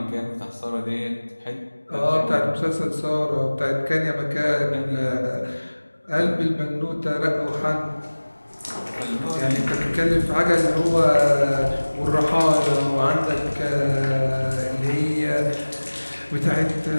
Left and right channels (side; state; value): both; inverted; correlation -1.00